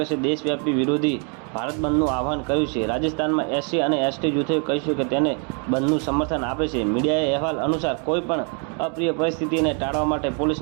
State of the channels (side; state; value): left; quieter; 38.9 dB